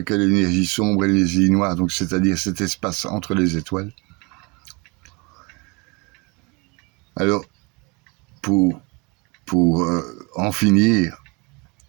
l'énergie sombre et l'énergie noire, donc c'est-à-dire cet espace entre les étoiles. Alors, pour en finir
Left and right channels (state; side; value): quieter; left; 28.4 dB